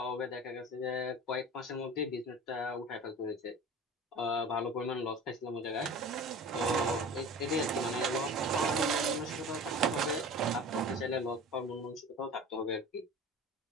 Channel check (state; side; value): normal; both; correlation 0.37